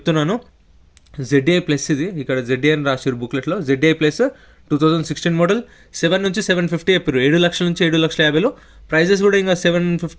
ZDI ప్లస్ ఇది ఇక్కడ ZDI అని రాశారు బుక్లెట్లో. ZDI ప్లస్ 2016 మోడల్ 7 నుంచి 750 చెప్పారు. 7 లక్షల నుంచి 7,50,000. ప్రైజెస్ కూడా ఇంకా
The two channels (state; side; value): identical; both; correlation 1.00